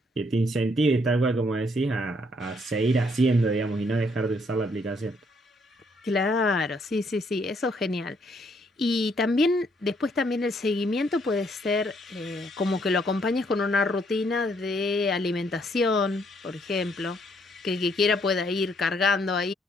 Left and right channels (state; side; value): normal; both; correlation 0.69